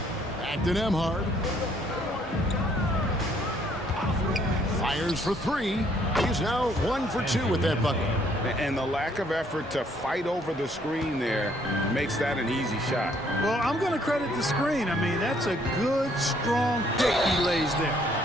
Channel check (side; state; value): both; normal; correlation 0.65